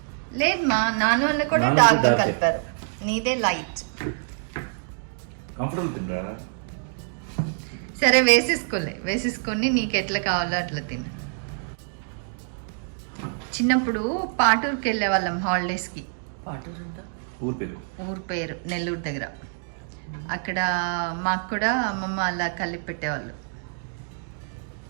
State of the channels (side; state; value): left; silent; 61 dB below the other